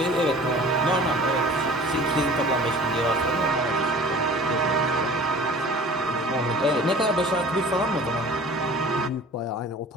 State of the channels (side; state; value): both; normal; correlation 0.44